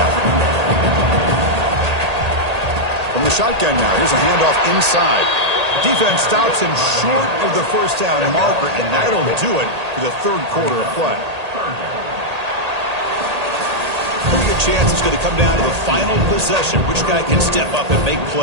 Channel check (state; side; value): late; left; 1.8 ms